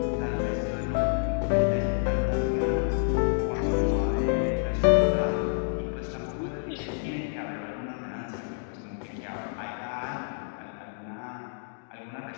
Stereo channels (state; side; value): silent; right; digital silence